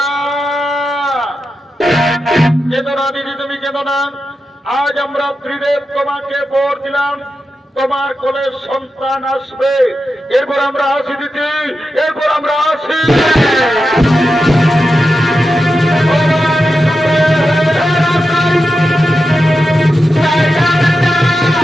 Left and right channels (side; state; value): both; normal; correlation 0.90